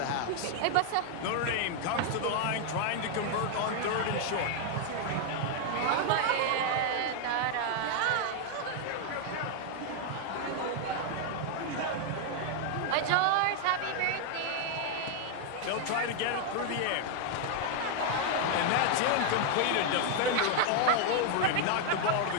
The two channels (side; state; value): both; different; correlation 0.00